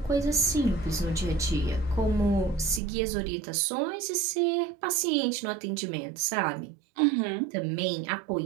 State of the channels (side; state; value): left; drops out; at 2.8 s